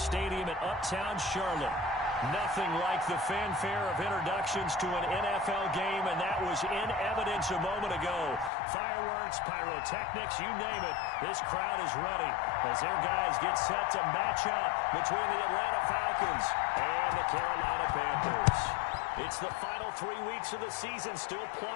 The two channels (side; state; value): right; drops out; at 8.5 s